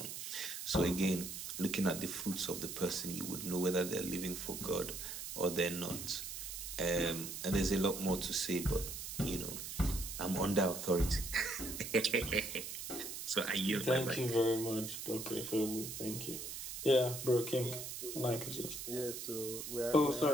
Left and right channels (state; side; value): noise; right; hiss, 7 dB below the sound